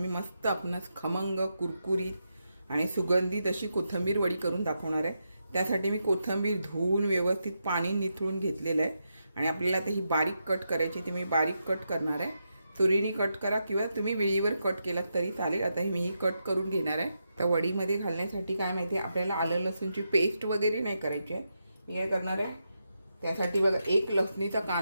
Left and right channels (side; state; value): both; inverted; correlation -0.85